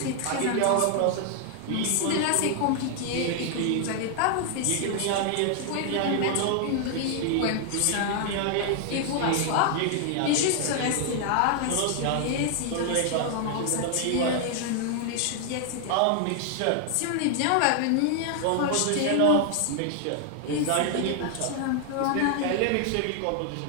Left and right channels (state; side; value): different; both; correlation 0.00